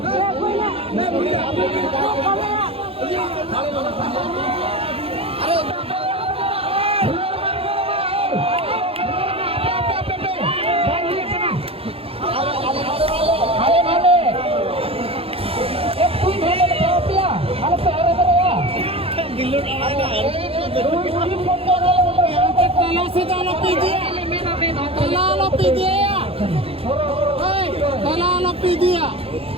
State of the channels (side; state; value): left; late; 0.28 ms